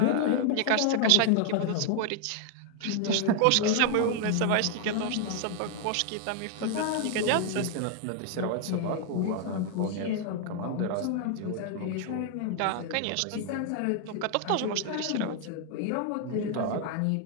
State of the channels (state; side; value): different; both; correlation 0.00